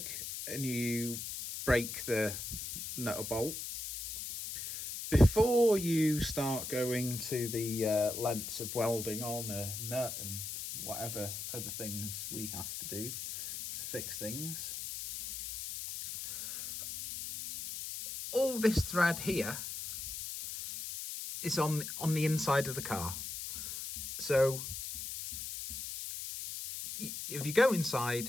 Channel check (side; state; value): left; noise; hiss, 6 dB below the sound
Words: and you break the nut or bolt, before you start going to the lengths of welding on a nut and whatever other things we have to do to fix things, all this thread here is on the inside of the car. So if you go inside,